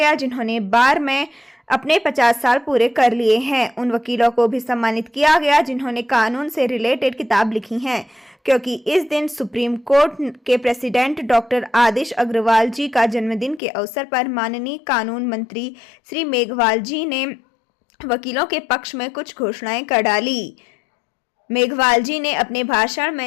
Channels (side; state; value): right; drops out; at 13.6 s